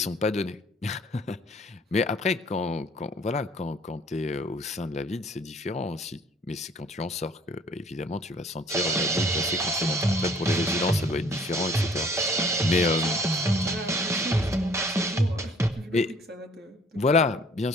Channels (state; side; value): normal; both; correlation 0.56